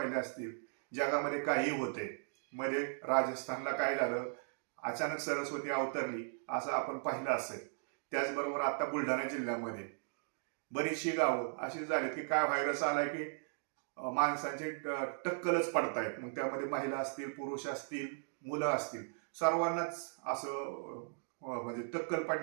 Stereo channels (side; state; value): left; silent; digital silence